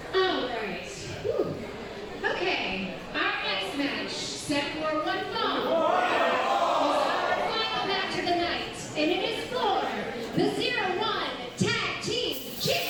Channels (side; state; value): both; identical; correlation 1.00